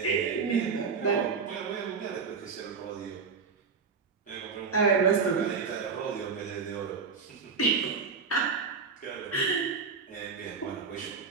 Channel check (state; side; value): quieter; left; 5.4 dB